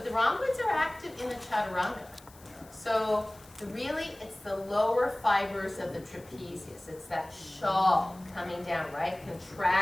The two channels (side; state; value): left; noise; hiss, 24 dB below the sound